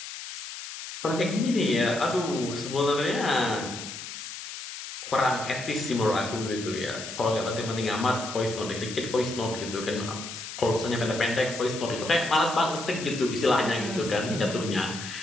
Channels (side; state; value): left; noise; hiss, 9 dB below the sound